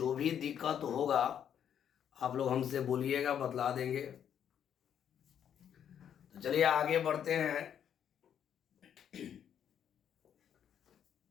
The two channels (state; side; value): quieter; right; 9.0 dB